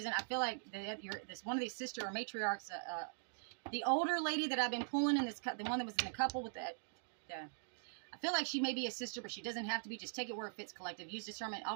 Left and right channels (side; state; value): left; silent; digital silence